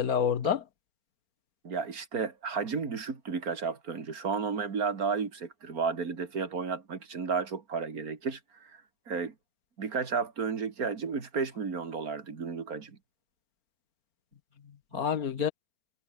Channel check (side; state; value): left; late; 4.4 ms